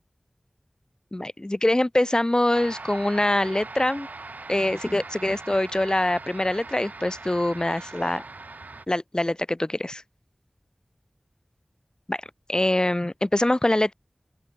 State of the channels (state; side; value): normal; both; correlation 0.97